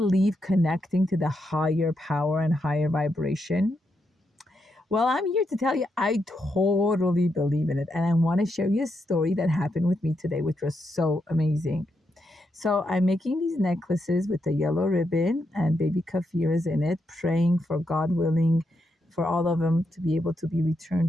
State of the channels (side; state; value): both; normal; correlation 0.82